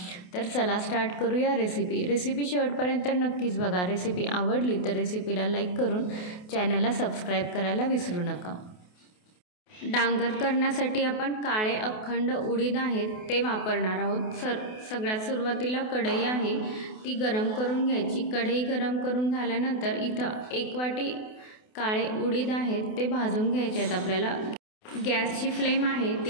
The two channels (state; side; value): late; right; 28 ms